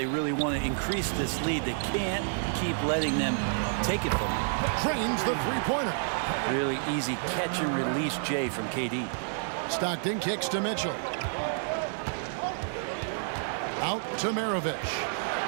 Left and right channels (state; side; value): silent; left; digital silence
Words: really want to increase this lead. They can't keep letting them take it from them. Trains the three-pointer. Really easy catch and release Jay from KD. Stockton kicks to Mitchell. Out to Maravich.